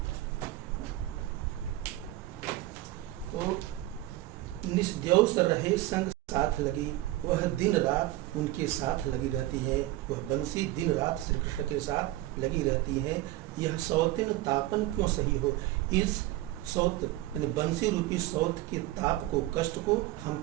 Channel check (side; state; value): left; quieter; 16.4 dB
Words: तो निस्द्यौस रहे संग साथ लगी, वह दिन रात उनके साथ लगी रहती है। वह बंसी दिन रात श्री कृष्ण के साथ लगी रहती है। यह सौतिन तापन क्यों सही हो? इस सौत यानी बंसी रूपी सौत के ताप को, कष्ट को हम